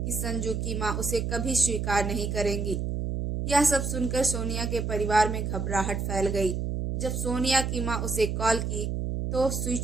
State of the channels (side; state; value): right; noise; hum, 2 dB below the sound